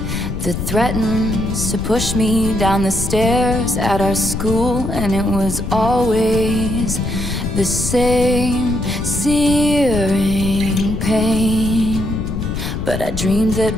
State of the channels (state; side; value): noise; left; rumble, 4 dB below the sound